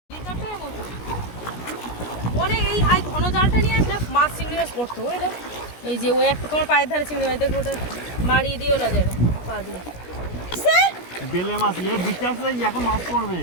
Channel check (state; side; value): late; right; 17 ms